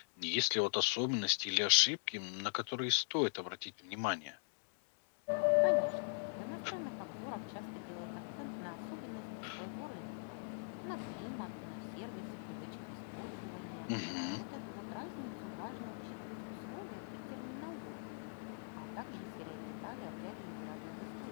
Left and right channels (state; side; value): silent; right; digital silence